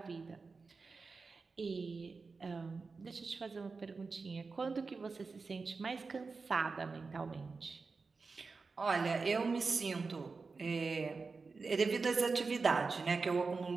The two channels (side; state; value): left; quieter; 4.4 dB